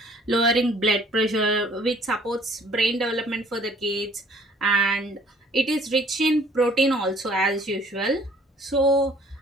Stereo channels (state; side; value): normal; both; correlation 0.56